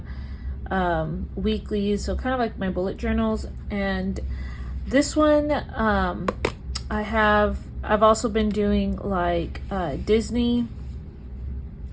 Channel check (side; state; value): both; identical; correlation 1.00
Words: weekly, so kind of like my bullet journals. And this one, I've also been doing like Disney